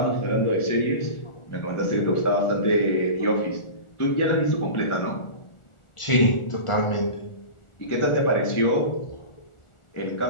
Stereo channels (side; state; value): right; late; 1.4 ms